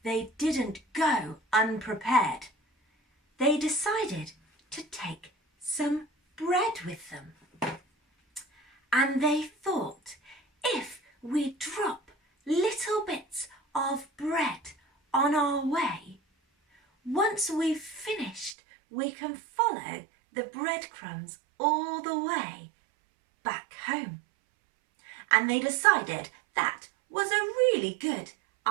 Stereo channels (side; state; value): left; drops out; at 18.5 s